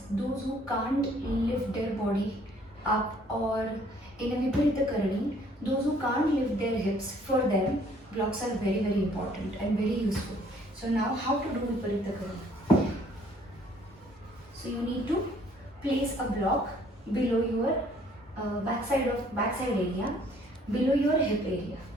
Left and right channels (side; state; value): both; normal; correlation 0.60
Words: Those who can't lift their body up, or in a Viparita Karani, those who can't lift their hips, for them blocks are very important and very useful. So now how to do Viparita Karani? So you need to place a block below your backside area, below your hip area.